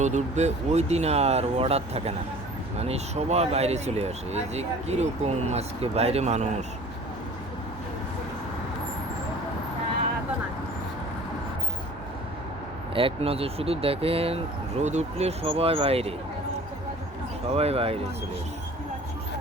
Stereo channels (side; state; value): both; normal; correlation 0.46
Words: উঠবে ওই দিন আর অর্ডার থাকে না, মানে সবাই বাইরে চলে আসে। এই যে কীরকম আজকে বাইরে মানুষ, এক নজর শুধু দেখেন, রোদ উঠলে সবাই বাইরে, সবাই বাইরে চলে আসে,